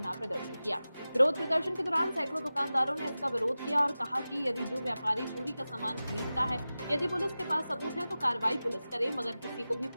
प्रदर्शन किया। विरोध प्रदर्शन के दौरान सैकड़ों दुकानदारों ने इसका विरोध किया और कहा कि यदि जो व्यापारी चोरी का सामान खरीदता है, यदि पुलिस के पास सबूत है तो कार्रवाई पुलिस करे, मगर किसी को भी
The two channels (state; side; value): inverted; both; correlation -0.95